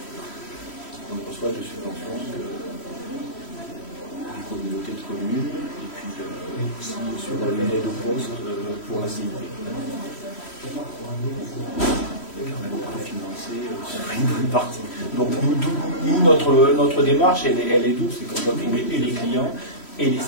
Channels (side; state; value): right; late; 3.1 ms